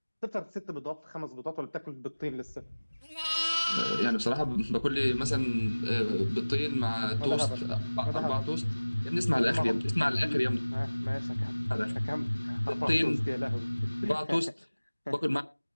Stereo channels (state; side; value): inverted; both; correlation -1.00